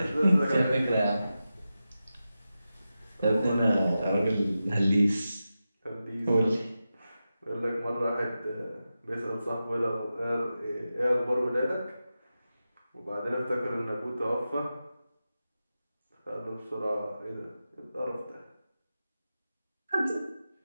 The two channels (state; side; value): inverted; both; correlation -0.92